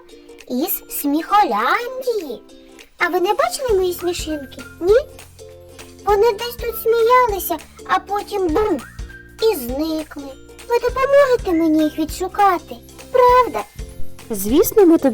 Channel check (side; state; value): both; identical; correlation 1.00